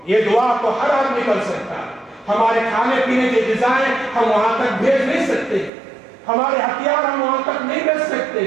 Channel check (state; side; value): drops out; left; at 5.7 s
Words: یہ دعا تو ہر آدمی کر سکتا ہے۔ ہمارے کھانے پینے کی غذائیں ہم وہاں تک بھیج نہیں سکتے، ہمارے ہتھیار ہم وہاں تک نہیں بھیج سکتے،